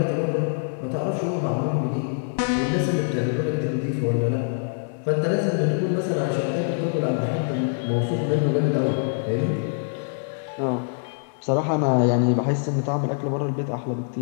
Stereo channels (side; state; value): right; silent; 62 dB below the other